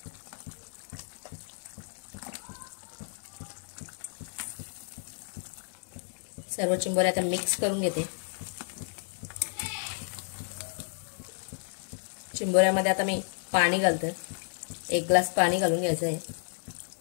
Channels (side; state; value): right; silent; digital silence